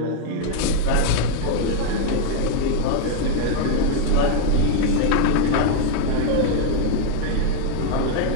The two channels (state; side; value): different; both; correlation 0.00